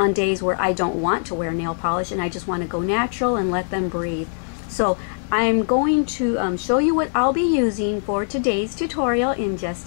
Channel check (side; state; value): right; silent; digital silence